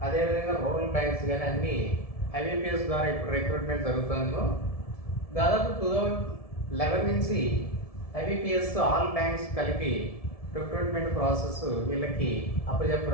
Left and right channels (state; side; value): late; right; 1.7 ms